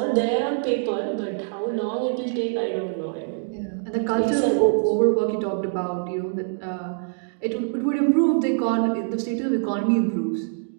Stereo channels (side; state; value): left; silent; digital silence